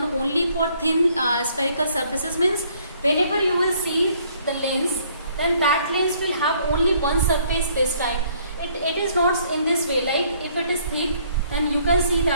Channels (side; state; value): both; inverted; correlation -0.63